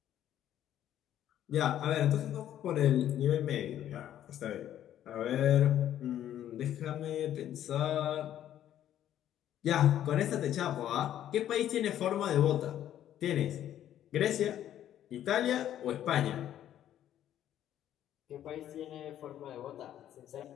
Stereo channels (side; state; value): right; quieter; 11.4 dB